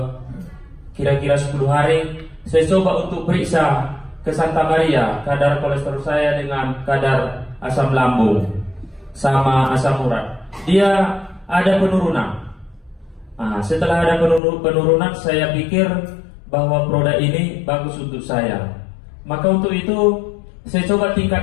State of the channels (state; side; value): drops out; right; at 14.4 s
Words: kira-kira 10 hari. Saya coba untuk periksa ke Santa Maria kadar kolesterol saya dengan kadar asam lambung sama asam urat. Dia ada penurunan. Setelah ada penurunan, saya pikir bahwa produk ini bagus untuk saya. Maka untuk itu saya coba